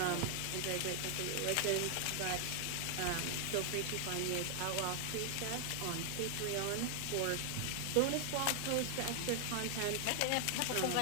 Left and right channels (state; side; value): different; both; correlation 0.00